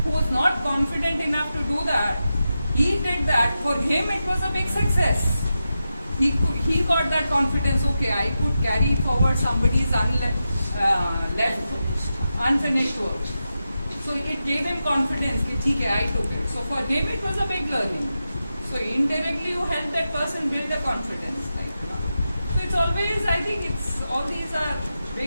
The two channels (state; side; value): inverted; both; correlation -0.90